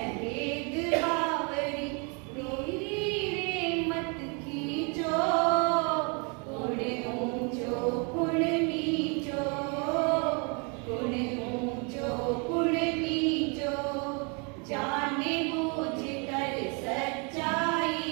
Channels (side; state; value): left; quieter; 34.0 dB